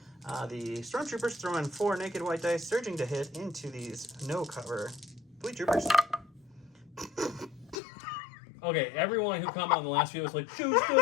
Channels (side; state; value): right; drops out; at 7.8 s